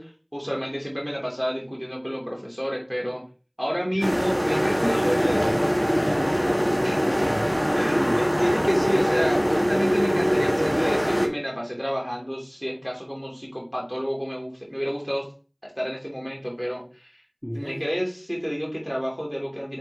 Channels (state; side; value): identical; both; correlation 1.00